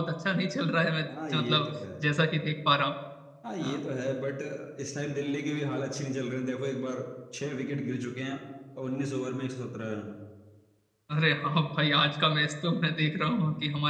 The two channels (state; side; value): identical; both; correlation 1.00